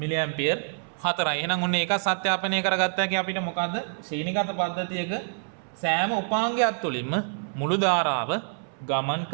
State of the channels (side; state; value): left; silent; 60 dB below the other